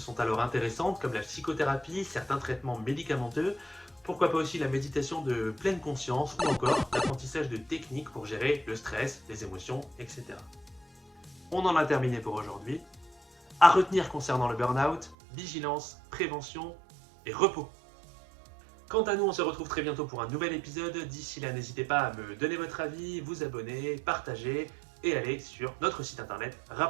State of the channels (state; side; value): drops out; left; at 15.2 s